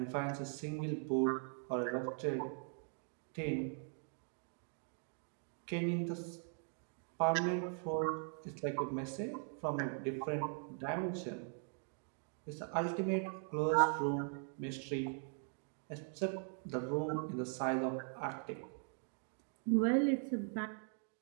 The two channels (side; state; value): left; silent; 51 dB below the other